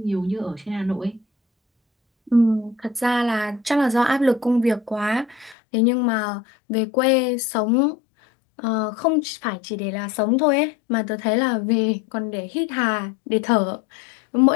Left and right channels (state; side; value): drops out; right; at 5.6 s